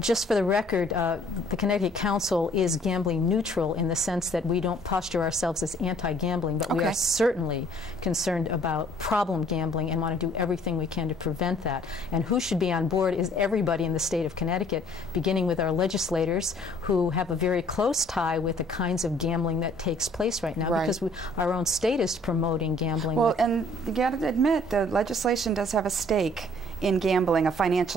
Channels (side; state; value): both; normal; correlation 0.58